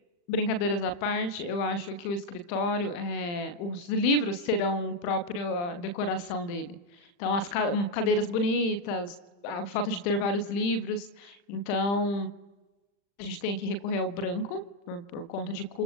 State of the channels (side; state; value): right; late; 40 ms